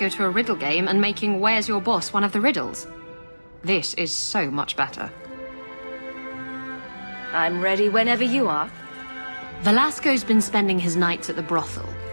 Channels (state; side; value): inverted; both; correlation -1.00